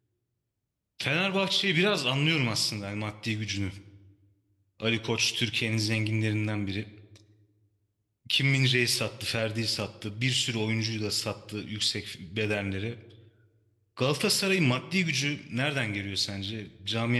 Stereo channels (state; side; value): identical; both; correlation 1.00